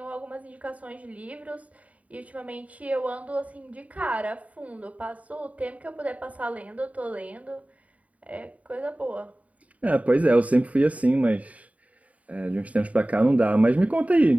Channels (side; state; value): left; late; 0.069 ms